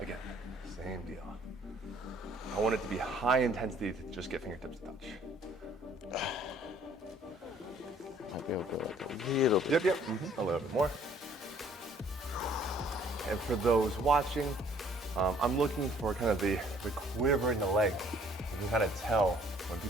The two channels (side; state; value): both; normal; correlation 0.59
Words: same deal. I want it to be high intensity to just get fingertips to touch. Might be able to go like a little bit. Yep. A little bit more. And for those watching, I'm looking for kind of the quiver in the leg. You can kind of tell when